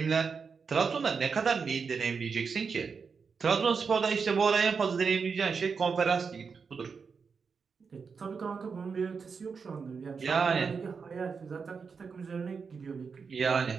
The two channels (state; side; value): quieter; left; 5.5 dB